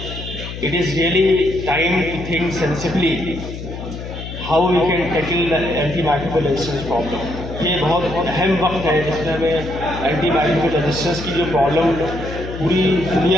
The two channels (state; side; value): noise; left; hum, 9 dB below the sound